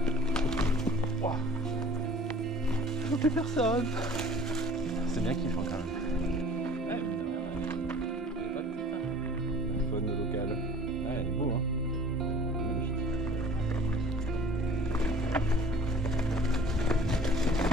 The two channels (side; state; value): both; normal; correlation 0.48